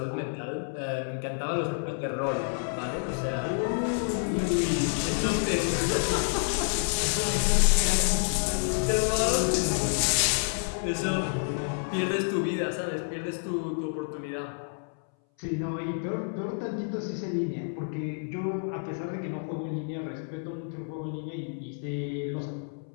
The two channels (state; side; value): silent; right; 59 dB below the other